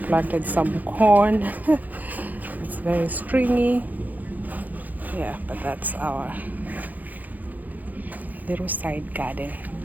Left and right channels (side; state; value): left; late; 0.082 ms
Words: planted some corn. It's very stringy. Yeah, but that's our little side garden.